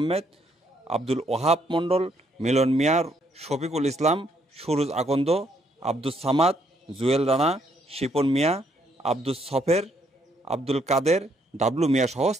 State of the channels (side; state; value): both; normal; correlation 0.71